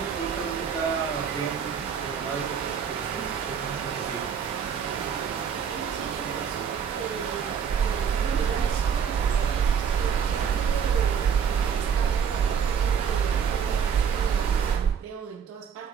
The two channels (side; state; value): left; quieter; 7.2 dB